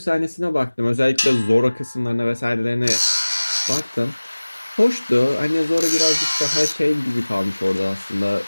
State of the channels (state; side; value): inverted; both; correlation -1.00